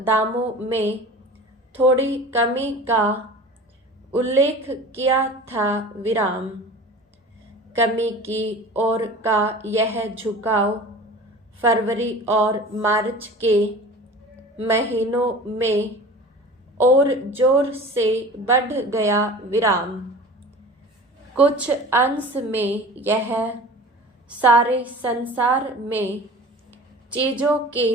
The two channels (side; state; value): both; normal; correlation 0.39